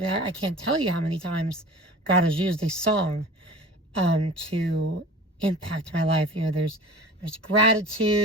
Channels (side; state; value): both; normal; correlation 0.39